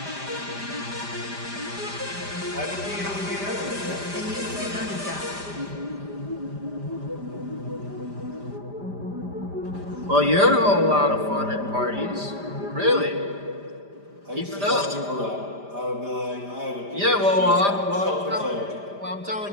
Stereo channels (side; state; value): left; late; 5.0 ms